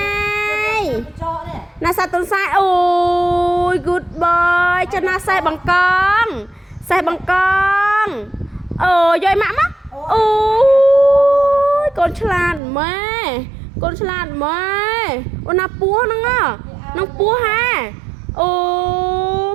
ណាសាតុនសាយអូយ good boy ចុះណាសេះបង្កងអូយម៉ាក់មកអូយកូនឆ្លាតម៉ែអូនណាពស់ហ្នឹងនឹងពស់ហាអូ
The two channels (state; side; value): drops out; left; at 12.6 s